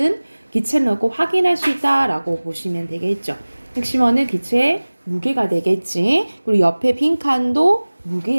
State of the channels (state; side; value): inverted; both; correlation -1.00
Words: 기체를 넣고 확인할 수 있다라고 보시면 되겠죠. 핵심어는 기체의 무게가 되겠지. 그리고 옆에 빈 칸도